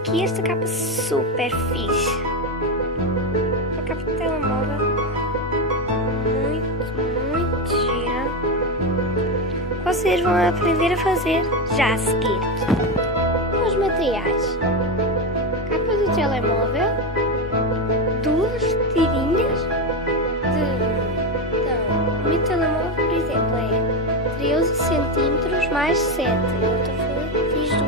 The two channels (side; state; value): both; normal; correlation 0.12